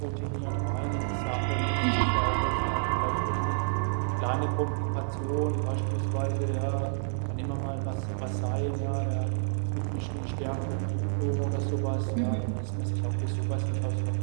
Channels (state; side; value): silent; left; digital silence